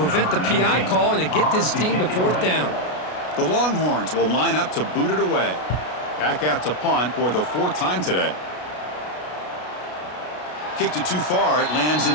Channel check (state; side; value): late; right; 33 ms